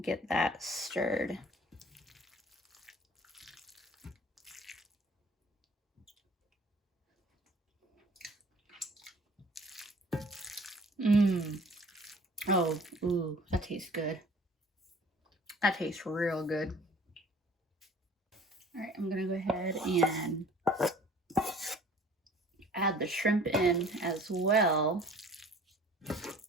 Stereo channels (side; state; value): both; normal; correlation 0.50